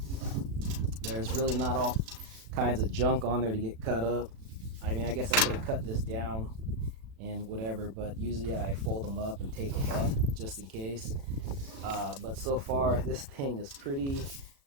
There's really not all kinds of junk on there to get cut up. I mean, I guess I could have cut this down and whatever, but usually I fold them up and tape them up just in case. But so far, this thing is pretty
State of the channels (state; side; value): late; left; 36 ms